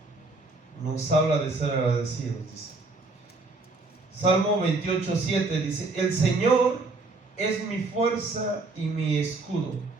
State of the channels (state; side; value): quieter; left; 3.4 dB